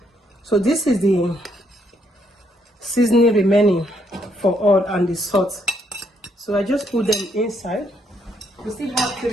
So this is the seasoning remaining for all and the salt. So I just put them inside. We still have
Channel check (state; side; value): normal; both; correlation 0.73